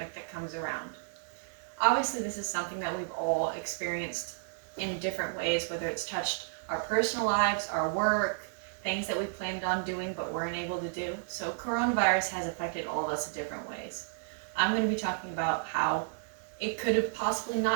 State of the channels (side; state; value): left; silent; digital silence